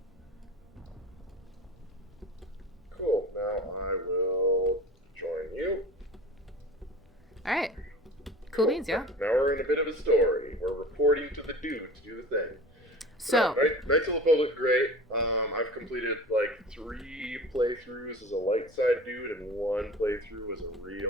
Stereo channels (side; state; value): both; normal; correlation 0.38